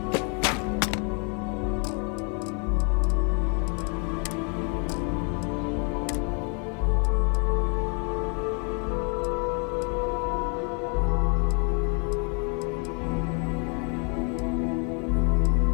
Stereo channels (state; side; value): quieter; right; 38.0 dB